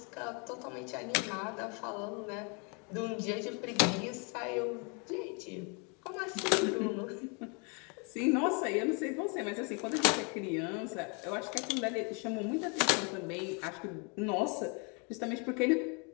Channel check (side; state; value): right; quieter; 34.2 dB